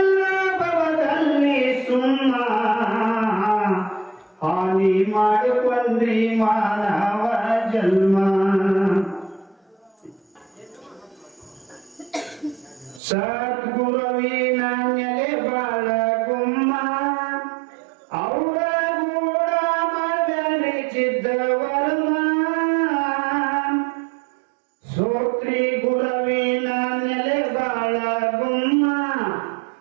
ಭವದಲ್ಲಿ ಸುಮ್ಮ ಹಾನಿ ಮಾಡಿಕೊಂಡ್ರಿ ಮಾನವ ಜನ್ಮ. ಸದ್ಗುರುವಿನ ನೆಲೆ ಬಾಳ ಗುಮ್ಮ, ಅವರ ಗೂಡ ಮಾಡಲಿಚಿದ್ದ ವರ್ಮ. ಸೋತ್ರಿ ಗುರುವಿನ ನೆಲೆ ಬಾಳ ಗುಮ್ಮ,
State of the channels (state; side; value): drops out; left; at 13.0 s